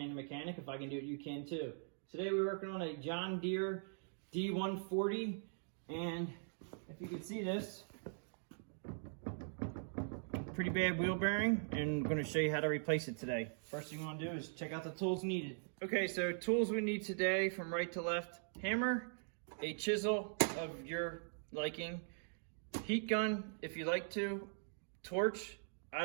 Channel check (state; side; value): silent; left; digital silence